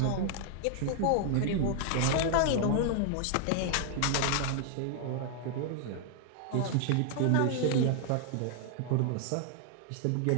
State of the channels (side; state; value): both; different; correlation 0.00